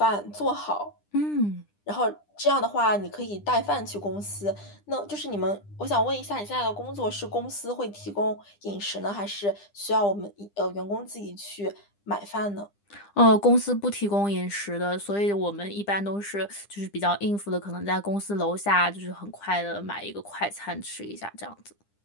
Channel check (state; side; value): late; right; 9.9 ms